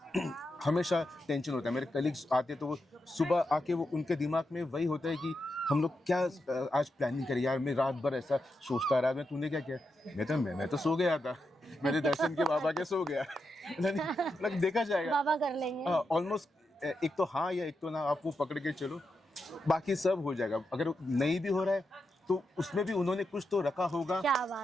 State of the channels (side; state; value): both; normal; correlation 0.86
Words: हमेशा टेंशन होता है। मेरे कलीग्स आते तो वो सुबह आके वो उनके दिमाग में वही होता है कि हम लोग क्या आज प्लानिंग करें यार, मैं रात भर ऐसा सोचता रहा। तूने क्या किया? मैं तो सो गया था, मेरे दर्शन के बाबा के सो गया। मतलब देखा जाएगा, बाबा कर लेंगे ऑलमोस्ट एक तो हाँ या एक तो ना, आप वो पकड़ के चलो, बाकी सब हो जाएगा। अगर नहीं भी हो रहा है तो उसमें भी उन्होंने कुछ तो रखा होगा। क्या